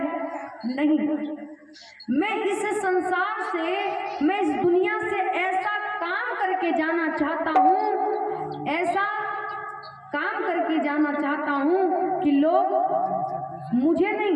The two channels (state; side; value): identical; both; correlation 1.00